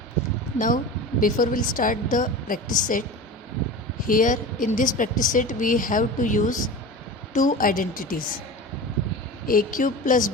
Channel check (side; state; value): both; normal; correlation 0.31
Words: Now, before we'll start the practice set, here in this practice set we have to use two identities, a cube plus